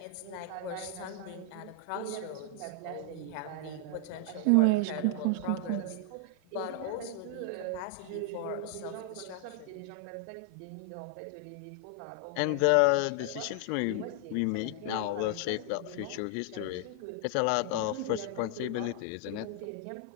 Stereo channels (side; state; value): both; different; correlation 0.00